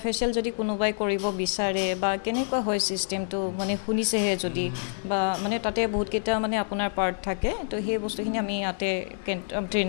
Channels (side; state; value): right; silent; 60 dB below the other